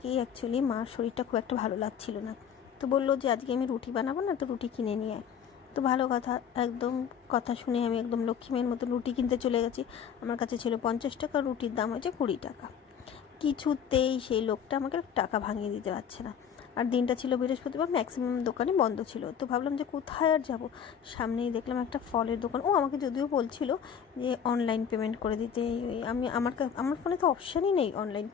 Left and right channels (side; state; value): right; quieter; 7.9 dB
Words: অ্যাকচুয়ালি মার শরীরটা খুব একটা ভালো লাগছিল না। তো বললো যে আজকে আমি রুটি বানাবো না, তো রুটি কিনে নিয়ে আয়। তো ভালো কথা, একদম কথা শুনে আমি একদম লক্ষ্মীমের মতো রুটি কিনতে চলে গেছি। আমার কাছে ছিল 50 টাকা, রুটির দাম হয়েছে 20 টাকা। কিছুতেই সেই লোকটা আমাকে টাকা ভাঙিয়ে দিতে পারছে না। আর দিনটা ছিল বৃহস্পতিবার, ম্যাক্সিমাম দোকানই বন্ধ ছিল। তো ভাবলাম যে কোথায় আর যাব, সামনেই দেখলাম একটা ফলের দোকান। ও আমাকে যদিও বলছিল যে অনলাইন পেমেন্ট করে দিতে। আমি আমার ফোনে তো অপশানই নেই অনলাইন